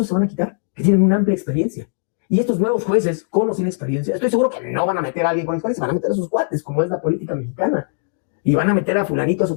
se van a quitar, que tienen una amplia experiencia. Y estos nuevos jueces, con o sin experiencia, estoy seguro que no van a meter a alguien con experiencia, van a meter a sus cuates, como es la política mexicana. Y van a meter a fulanito, a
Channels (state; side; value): silent; right; digital silence